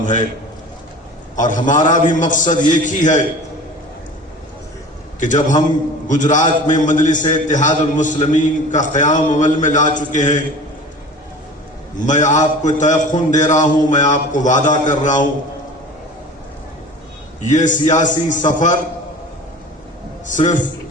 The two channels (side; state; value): both; normal; correlation 0.39